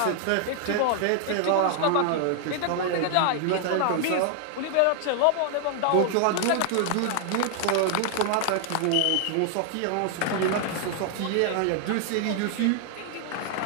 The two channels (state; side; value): different; both; correlation 0.00